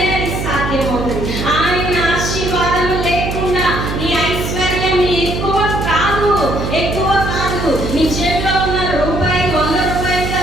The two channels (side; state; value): right; noise; hum, 4 dB below the sound